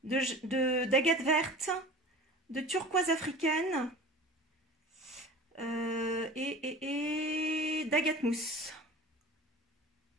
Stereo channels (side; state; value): both; normal; correlation 0.38